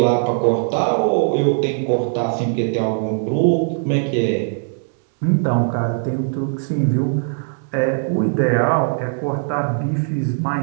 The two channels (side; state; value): left; silent; digital silence